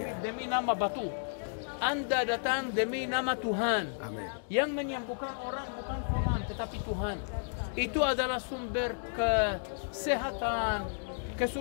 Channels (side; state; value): right; silent; digital silence